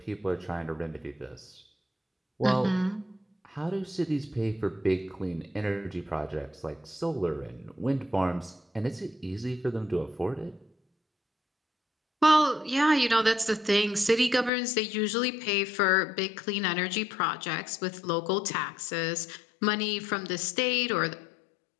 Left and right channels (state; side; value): drops out; right; at 14.5 s